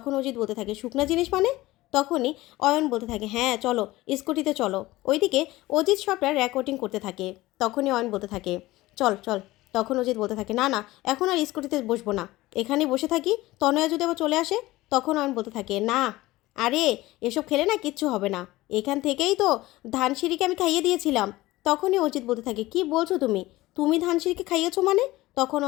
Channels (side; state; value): right; quieter; 18.3 dB